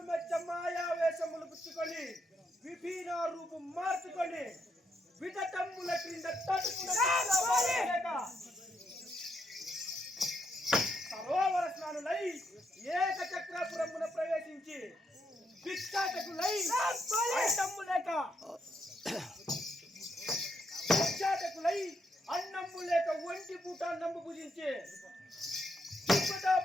మెచ్చ మాయావేశములు పుచ్చుకొని విభిన్న రూపం మార్చుకొని విధతమ్ముల క్రింద సరోవర స్నానులై ఏకచక్రపురమున ప్రవేశించి భిక్షాటకులై అన్నమ్ము లేక ఒంటి పూట నమ్ము పూజించే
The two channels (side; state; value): both; normal; correlation 0.78